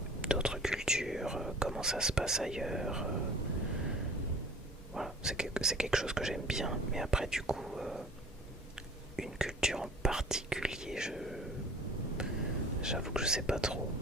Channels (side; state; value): both; normal; correlation 0.45